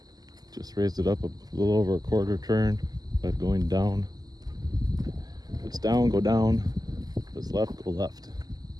Just raised it up a little over a quarter turn, but going down. If it's down, go down. If it's left, go left.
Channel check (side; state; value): left; late; 0.19 ms